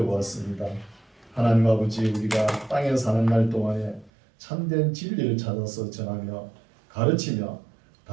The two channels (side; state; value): left; drops out; at 4.1 s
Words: 하나님 아버지, 우리가 땅에 사는 날 동안에 참된 진리를 찾아서 전하며 가르치며